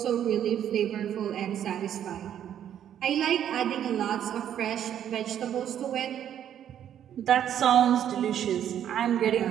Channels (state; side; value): quieter; left; 10.0 dB